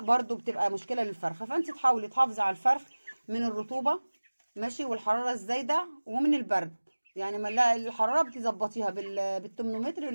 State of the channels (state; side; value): inverted; both; correlation -1.00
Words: برده بتبقى مشكله للفرخه. فانت تحاولي تحافظي على الفرخ من الرطوبه ماشي، والحراره الزايده، ومن البرد. يعني ما الحراره بتظبطيها بالترمومتر.